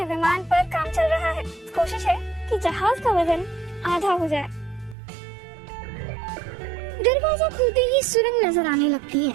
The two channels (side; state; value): left; drops out; at 5.0 s